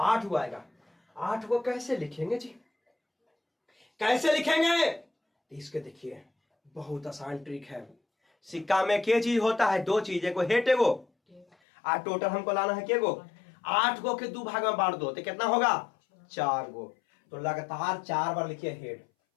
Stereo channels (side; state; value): right; drops out; at 11.5 s